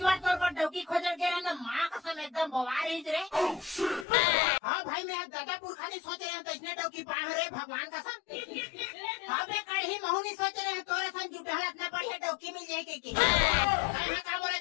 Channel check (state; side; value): drops out; right; at 4.0 s